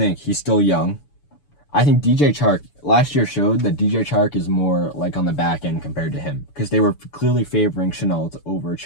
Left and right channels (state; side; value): late; right; 6.9 ms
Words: he's still young. I think DJ Chark last year showed that DJ Chark is more like on the back end compared to him because they were clearly favoring Shenault over